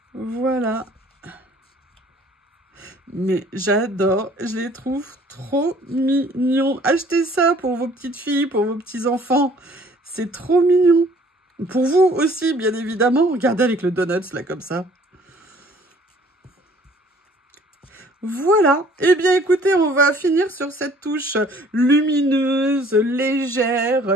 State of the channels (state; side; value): normal; both; correlation 0.56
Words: Voilà. Mais j'adore, je les trouve trop mignons. Achetez ça pour vos petites filles, pour vos petits enfants. C'est trop mignon. Pour vous aussi, bien évidemment. Regardez avec le donuts, là, comme ça. Voilà. Eh bien, écoutez, on va finir sur cette touche lumineuse,